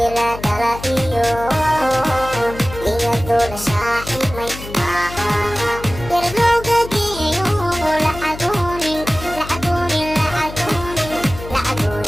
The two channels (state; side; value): noise; left; hum, 12 dB below the sound